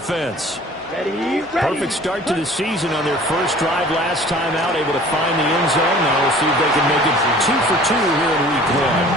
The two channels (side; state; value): both; normal; correlation 0.48